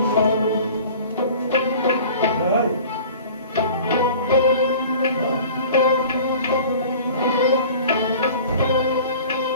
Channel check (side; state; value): both; inverted; correlation -0.44